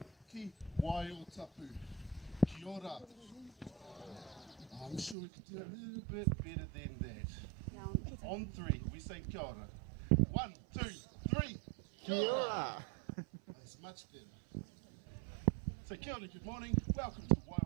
ki Waiotapu. Kia ora. I'm sure we could do a little bit better than that. On three, we say kia ora. 1, 2, 3. Kia ora. That's much better. So kia ora, good morning. Welcome to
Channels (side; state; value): left; drops out; at 5.2 s